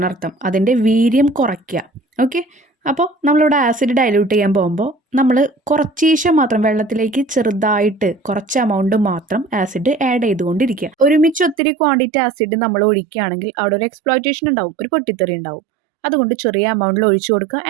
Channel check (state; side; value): drops out; left; at 11.6 s